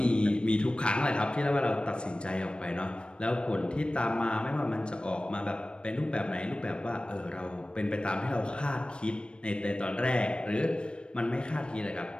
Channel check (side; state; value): right; late; 0.056 ms